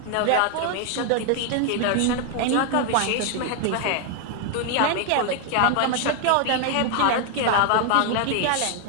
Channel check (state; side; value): different; both; correlation 0.00